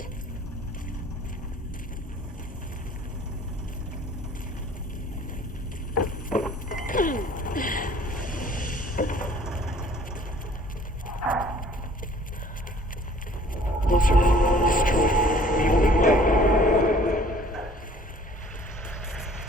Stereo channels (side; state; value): both; normal; correlation 0.54